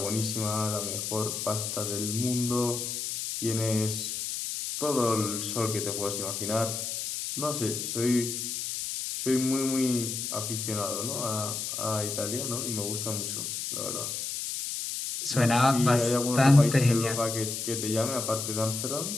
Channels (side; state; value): left; noise; hiss, 4 dB below the sound